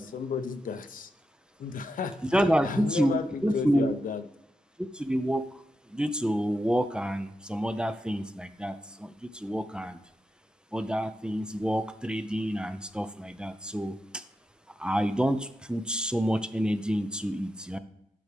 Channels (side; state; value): both; normal; correlation 0.88